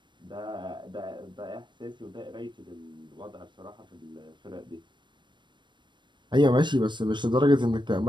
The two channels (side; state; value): left; late; 0.22 ms